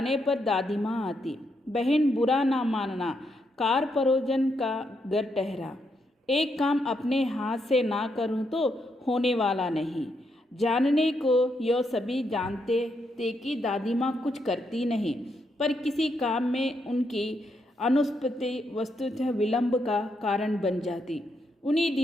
पर दादी माँ आती। बहन बुरा ना मानना, कार परोजन का घर ठहरा। एक काम अपने हाथ से ना करूं तो होने वाला नहीं। जानने को यो सभी जानते थे कि दादी माँ कुछ करती नहीं, पर किसी काम में उनकी अनुपस्थिति वस्तुतः विलंब का कारण बन जाती। उन्हीं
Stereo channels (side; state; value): both; normal; correlation 0.79